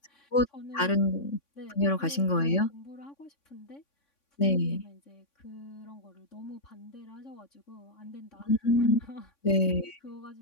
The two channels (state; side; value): late; right; 3.6 ms